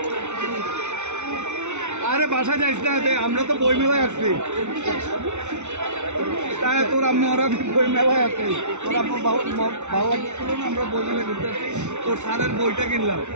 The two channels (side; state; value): left; late; 0.83 ms